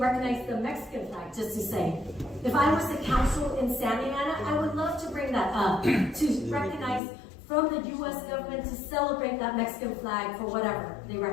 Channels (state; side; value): drops out; right; at 7.0 s